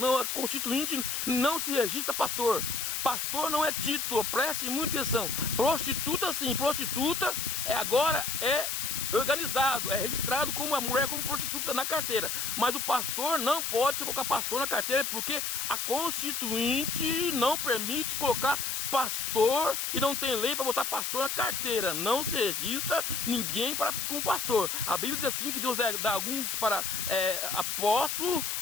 a constituinte não se registra pastor. Pastor não é título, preste muita atenção. Prostituta sim, prostituta agora é organizado, é registrado como a mulher como prostituta na carteira. Mas o pastor não pode se colocar pastor na carteira, porque a constituinte não permite colocar pastor e não tem lei para botar pastor na carteira. Não se registra ninguém como pastor. A Bíblia diz assim que Deus dá alguns para apóstolo,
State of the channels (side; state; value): left; noise; hiss, 1 dB below the sound